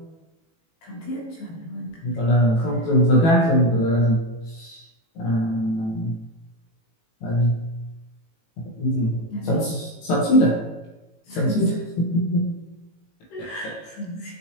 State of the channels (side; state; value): right; late; 18 ms